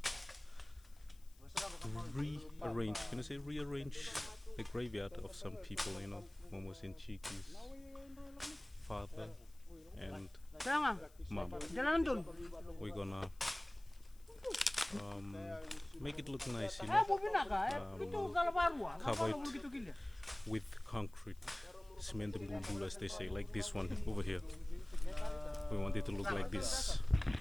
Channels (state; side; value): noise; left; hiss, 27 dB below the sound